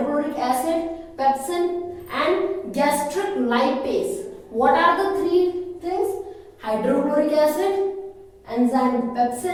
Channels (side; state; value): both; identical; correlation 1.00